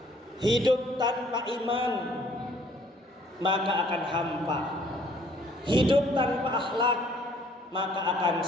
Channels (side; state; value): both; normal; correlation 0.60